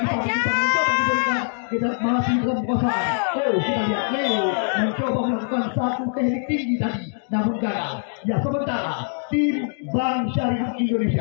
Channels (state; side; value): silent; right; digital silence